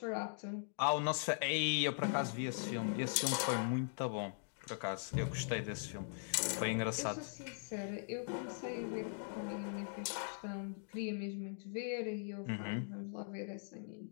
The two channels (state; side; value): silent; right; digital silence